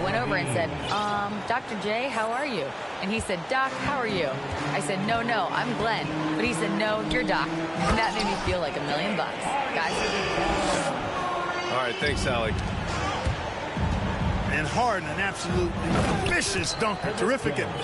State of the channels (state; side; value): identical; both; correlation 1.00